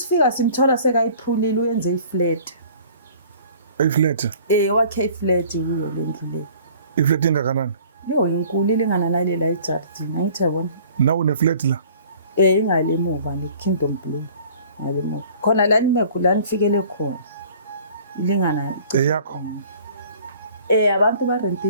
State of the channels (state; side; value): inverted; both; correlation -0.51